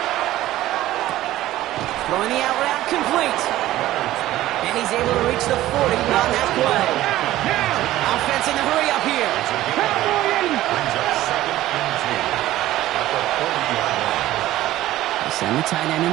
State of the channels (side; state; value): left; quieter; 15.0 dB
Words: Throwing the out route complete. And he's able to reach the 40 on that play. Offense in the hurry up here. Brings up 2nd and 2 at the 40-yard line. They send the tight end in